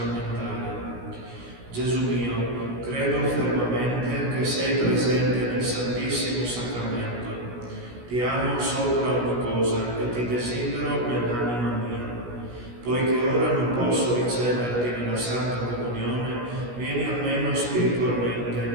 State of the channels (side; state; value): left; late; 16 ms